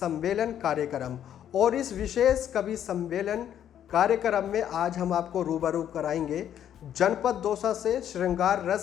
कार्यक्रम और इस विशेष कवि सम्मेलन कार्यक्रम में आज हम आपको रूबरू कराएंगे जनपद दौसा से श्रृंगार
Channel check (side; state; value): right; quieter; 10.2 dB